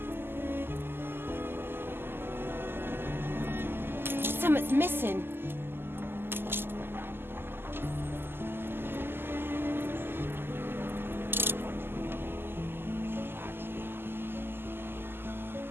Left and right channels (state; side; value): late; left; 0.11 ms